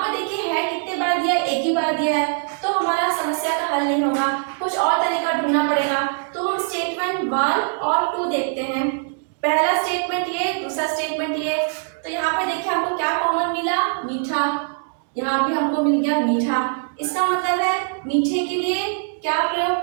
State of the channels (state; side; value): silent; left; digital silence